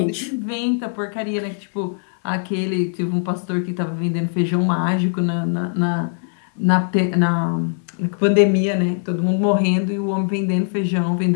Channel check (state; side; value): silent; right; 65 dB below the other